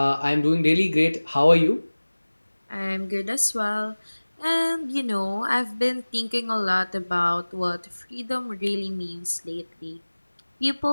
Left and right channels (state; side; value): inverted; both; correlation -1.00